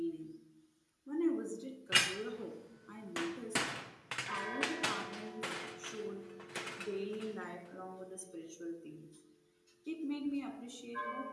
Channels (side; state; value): both; identical; correlation 1.00